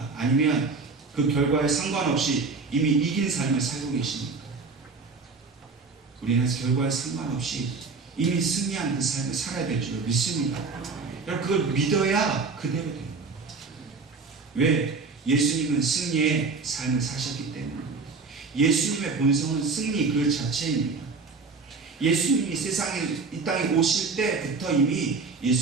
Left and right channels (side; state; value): left; quieter; 4.4 dB